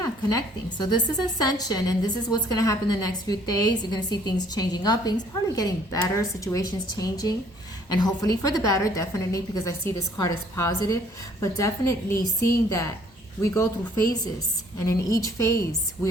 connecting. So this is ascension, and this is what's going to happen the next few days. You're going to see things changing up, things probably getting better, situations changing, and hopefully for the better, definitely, because I see this card as positive, but definitely seeing that we go through phases, and in each phase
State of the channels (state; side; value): normal; both; correlation 0.60